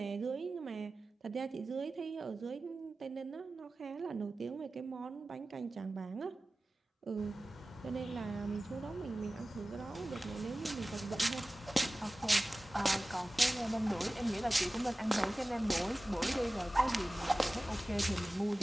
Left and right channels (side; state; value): both; normal; correlation 0.97